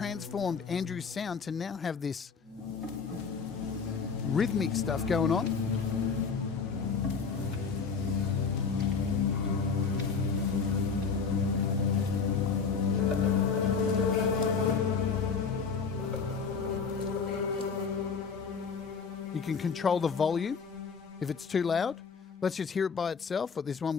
Andrew's sound to now have this rhythmic stuff going on. You can control the volume if it's too loud. Let's just hear it by itself, or this one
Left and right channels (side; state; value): right; quieter; 5.5 dB